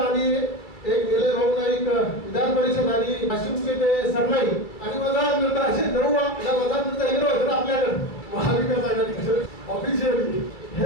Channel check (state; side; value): late; right; 2.3 ms